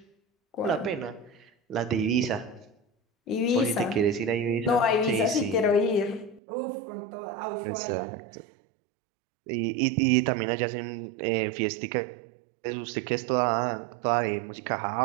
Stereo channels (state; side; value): drops out; left; at 6.4 s